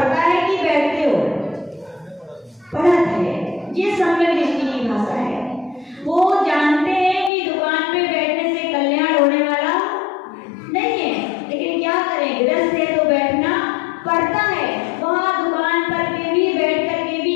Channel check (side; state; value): right; drops out; at 7.3 s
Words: है कि बैठते हो, पढ़त है। ये सम्यक दृष्टि की भाषा है। वो जानते हैं कि दुकान पे बैठने से कल्याण होने वाला नहीं है, लेकिन क्या करें, गृहस्थ है तो बैठना पड़ता है। वहाँ दुकान पर के भी बैठ कर के भी